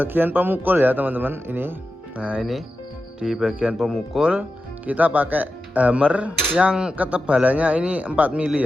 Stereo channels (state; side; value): normal; both; correlation 0.92